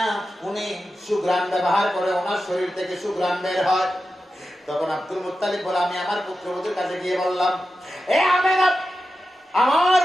উনি সুগ্রাম ব্যবহার করে, ওনার শরীর থেকে সুগ্রাম বের হয়। তখন আব্দুল মুত্তালিব বলে, আমি আমার পুত্রবধূর কাছে গিয়ে বললাম, এ আমেনা, আমার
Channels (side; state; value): both; normal; correlation 0.91